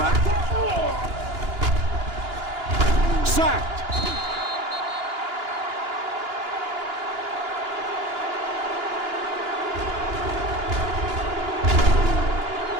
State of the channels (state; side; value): late; left; 2.9 ms